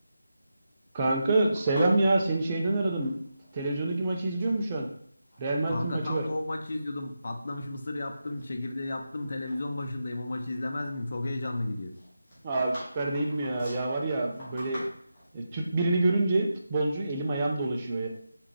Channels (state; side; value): inverted; both; correlation -0.87